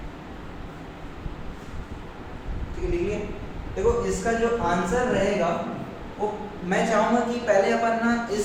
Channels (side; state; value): both; identical; correlation 1.00